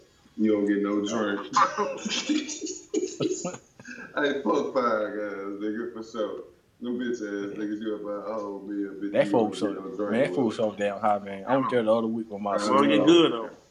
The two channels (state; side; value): identical; both; correlation 1.00